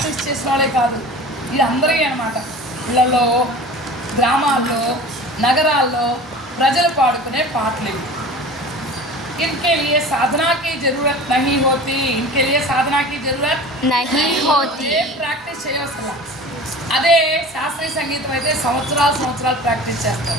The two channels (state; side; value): normal; both; correlation 0.39